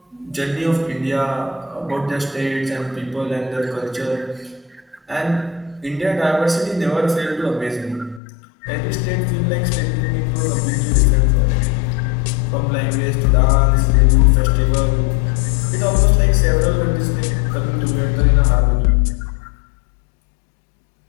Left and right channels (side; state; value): right; drops out; at 8.2 s